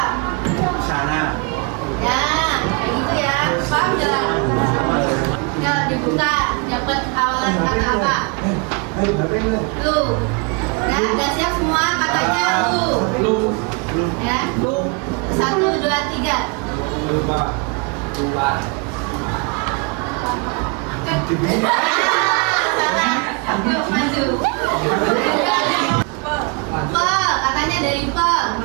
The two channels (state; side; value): quieter; left; 32.0 dB